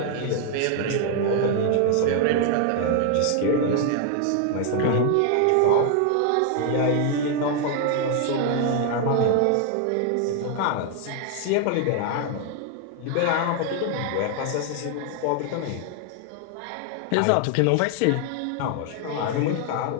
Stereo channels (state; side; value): different; both; correlation 0.00